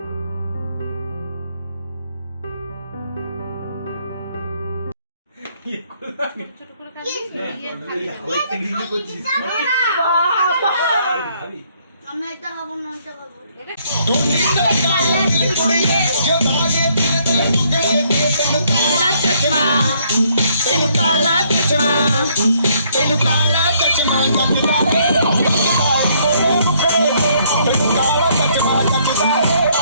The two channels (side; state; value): both; inverted; correlation -0.67